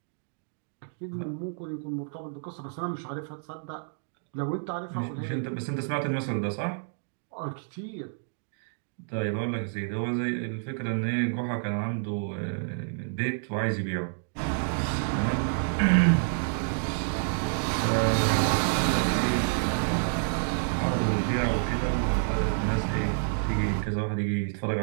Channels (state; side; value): silent; left; digital silence